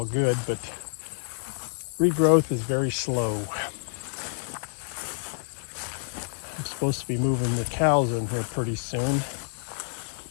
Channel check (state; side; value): silent; right; digital silence